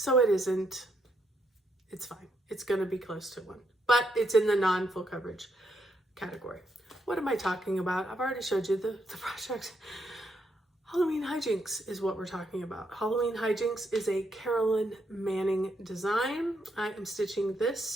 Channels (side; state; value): both; normal; correlation 0.78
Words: it isn't. It's fine. It's going to be close to one, but it's in the non-full coverage category. What am I talking about? I've already showed you the project. Halloween Hijinks is what we're talking about. Halloween Hijinks is a Carolyn Manning design. I am stitching